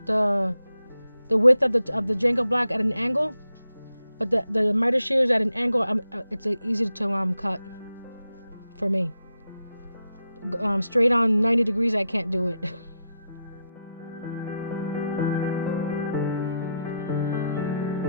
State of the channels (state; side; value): inverted; both; correlation -0.84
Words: the width of the Jenga block at an angle, but the miter shears at an angle, it's easy to cut for me. Straight on 90 degrees, I can't do it.